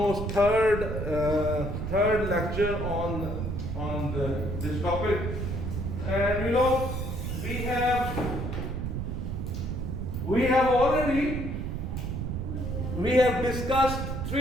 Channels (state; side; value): noise; right; rumble, 3 dB below the sound